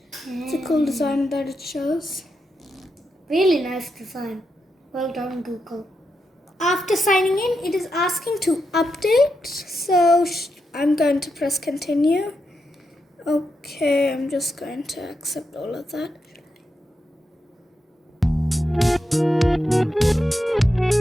It's a cool design that it shows. Really nice design. Well done, Google. After signing in, it is asking to update. So I'm going to press continue. Okay, I'm just going to accept all of that.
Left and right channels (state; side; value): normal; both; correlation 0.85